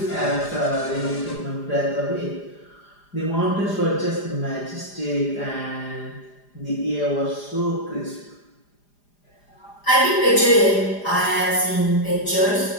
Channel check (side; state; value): right; late; 4.9 ms